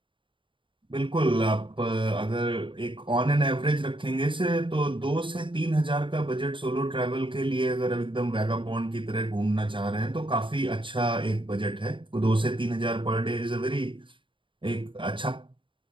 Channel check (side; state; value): left; late; 0.24 ms